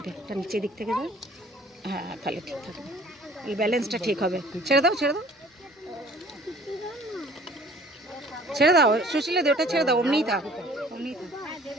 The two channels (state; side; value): normal; both; correlation 0.52